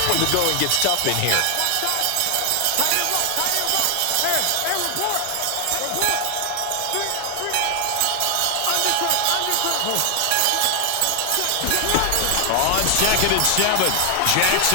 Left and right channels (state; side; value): different; both; correlation 0.00